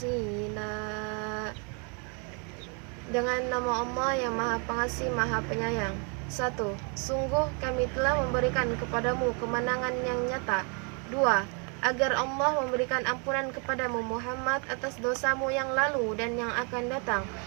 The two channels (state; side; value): quieter; left; 36.4 dB